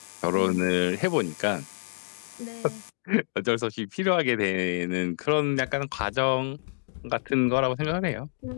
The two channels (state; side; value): silent; right; digital silence